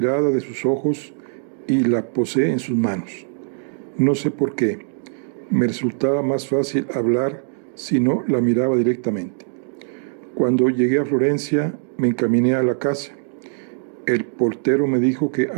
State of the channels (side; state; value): left; silent; digital silence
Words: de sus ojos y la posé en sus manos. No sé por qué. Me resultaba más fácil hablar si no la miraba directamente. Cuando llegué a Florencia, me encaminé a la casa. El portero me dijo que